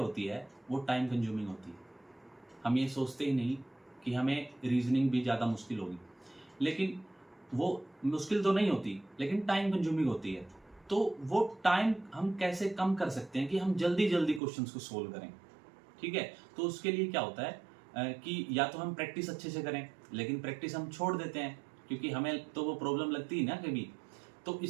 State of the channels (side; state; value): left; drops out; at 14.4 s